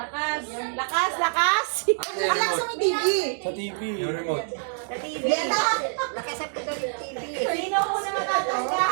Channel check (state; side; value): silent; left; 61 dB below the other